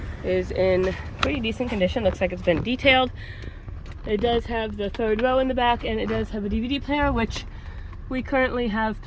is in pretty decent condition. Looks like it's been detailed. It does have the third row in the back, and it does have a DVD player, which we currently have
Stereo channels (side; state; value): both; identical; correlation 1.00